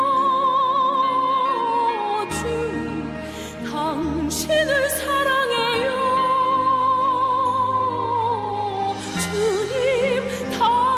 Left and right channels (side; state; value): both; identical; correlation 1.00